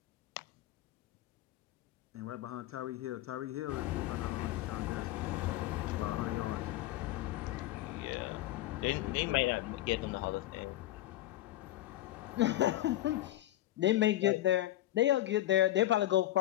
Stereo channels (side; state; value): right; quieter; 14.8 dB